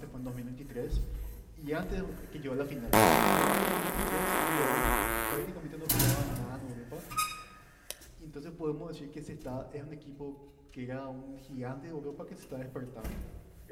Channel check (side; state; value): both; identical; correlation 1.00